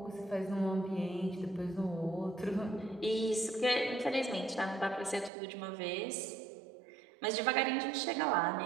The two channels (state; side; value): drops out; left; at 5.3 s